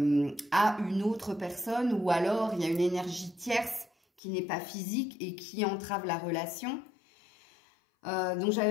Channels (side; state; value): right; drops out; at 4.2 s